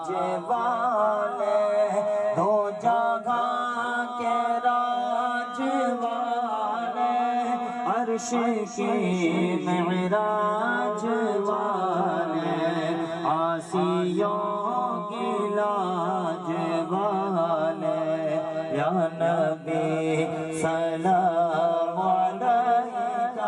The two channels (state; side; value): identical; both; correlation 1.00